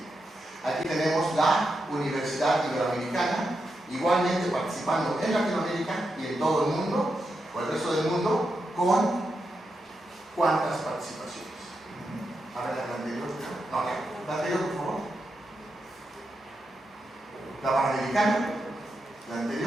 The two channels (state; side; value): normal; both; correlation 0.86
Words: Aquí tenemos la Universidad Iberoamericana, igualmente participando en Latinoamérica y en todo el mundo, o el resto del mundo, con cuántas participaciones. A ver, la anterior. No, la anterior, por favor. La Panamericana, la